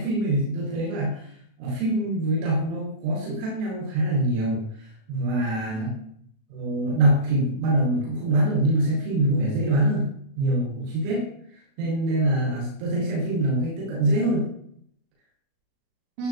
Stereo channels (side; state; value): left; late; 37 ms